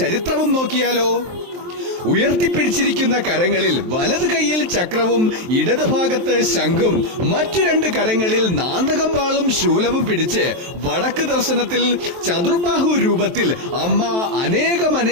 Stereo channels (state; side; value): late; left; 23 ms